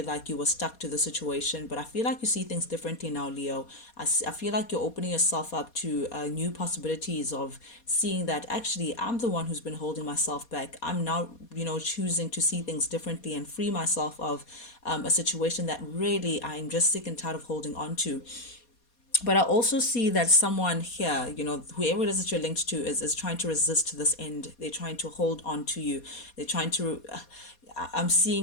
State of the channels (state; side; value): late; right; 4.2 ms